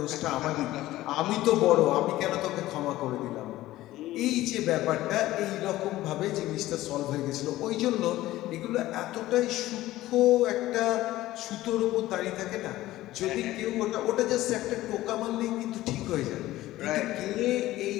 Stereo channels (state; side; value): quieter; right; 16.1 dB